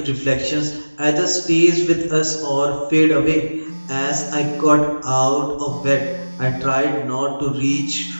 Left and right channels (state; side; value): inverted; both; correlation -1.00